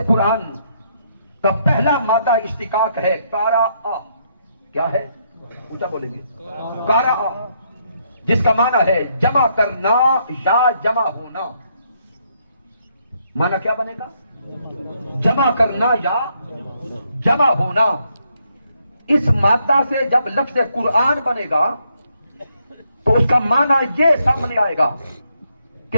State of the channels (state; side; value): inverted; both; correlation -0.75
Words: قرآن کا پہلا مادہ اشتقاق ہے کارا آ. کیا ہے؟ اونچا بولیں گے. کارا آ جس کا معنی ہے جمع کرنا یا جمع ہونا. معنی کیا بنے گا؟ جمع کرنا یا جمع ہونا. اس مادہ سے جب لفظ قرآن بنے گا تو اس کا معنی یہ سامنے آئے گا